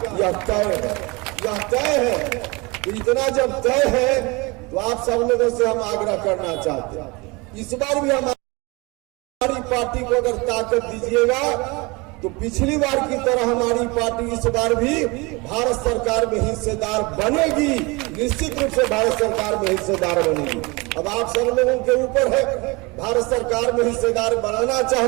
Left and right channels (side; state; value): left; quieter; 26.0 dB